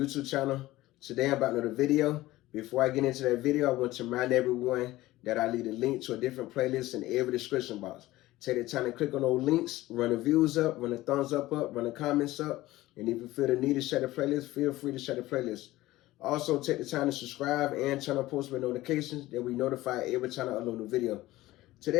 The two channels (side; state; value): right; quieter; 17.3 dB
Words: channel. Today I'm about another video. Before I get into that video, I want to remind everyone that I leave a link to a different playlist in every description box. Take the time to click on those links, run the views up, run the thumbs up, run the comments up, and if you feel the need to share the playlist, feel free to share the playlist. Also, take the time to subscribe and turn on post notifications that we notify every time I upload a video.